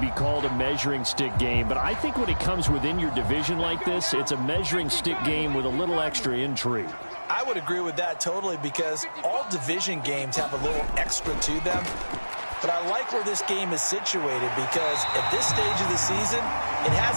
called a measuring stick game. But I think when it comes within your division like this, it's a measuring stick game with a little extra intrigue. I would agree with that totally because all division games have a little extra to them. But I like where this game is situated because at this stage of the season, it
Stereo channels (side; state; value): both; inverted; correlation -1.00